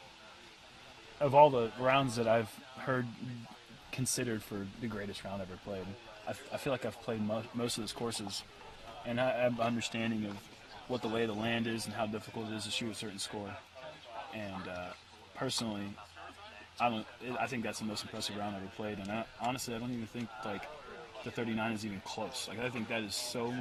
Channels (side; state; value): both; identical; correlation 1.00